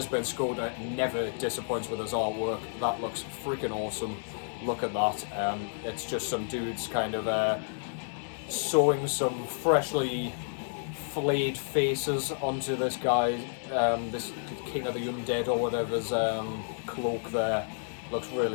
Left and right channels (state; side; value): silent; right; 55 dB below the other